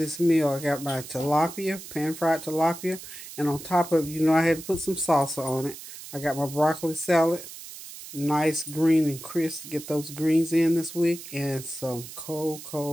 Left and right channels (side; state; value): right; noise; hiss, 13 dB below the sound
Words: meal. I got my tilapia, pan-fried tilapia, and on top of it, you know, I had to put some salsa on it. I got my broccoli salad, nice green and crisp to get those greens in this week, and some